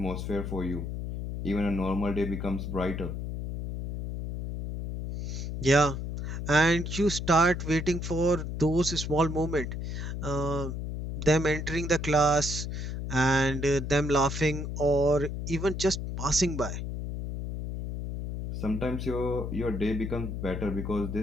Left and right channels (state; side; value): noise; left; hum, 5 dB below the sound